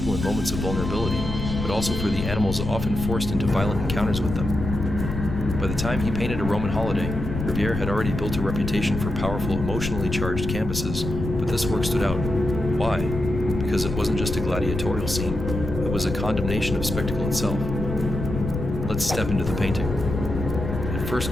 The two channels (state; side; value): noise; left; rumble, 5 dB below the sound